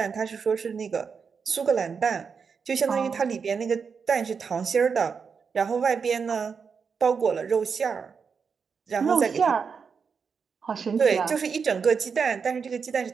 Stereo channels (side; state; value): left; quieter; 5.9 dB